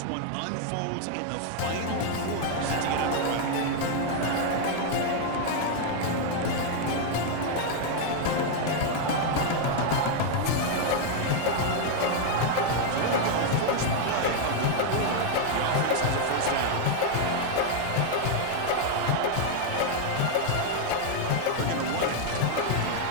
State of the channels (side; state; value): both; different; correlation 0.00